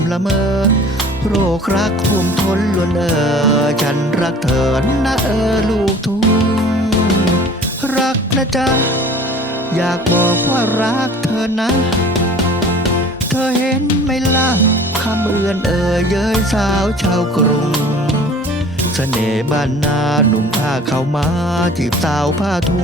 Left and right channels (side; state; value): both; normal; correlation 0.47